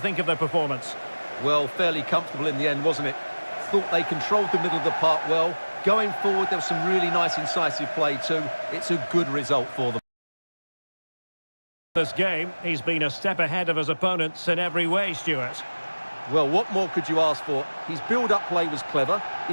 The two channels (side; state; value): both; inverted; correlation -1.00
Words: of their performance? Well, fairly comfortable in the end, wasn't it? Thought they controlled the middle of the park well. Going forward, there was some really nice incisive play too. It's a good result for them. This game, he's been a step ahead of his opponents in every way, Stuart. Well, what more could you ask for? His build-up play was clever,